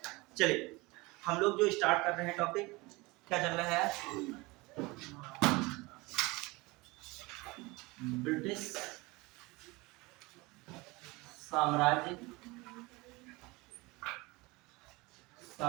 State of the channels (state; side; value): quieter; left; 23.5 dB